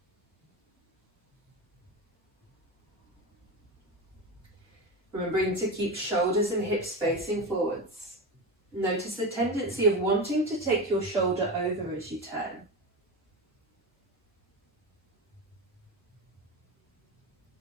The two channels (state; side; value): normal; both; correlation 0.21